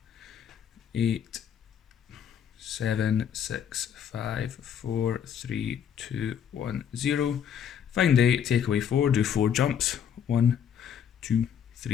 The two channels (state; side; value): quieter; right; 8.4 dB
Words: 8, 7, 6, 5, 4, 3, 2, 1, 0. Find 8, take away 4, do 4 jumps. 1, 2,